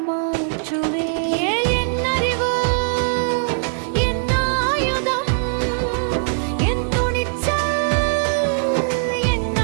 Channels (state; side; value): silent; left; 59 dB below the other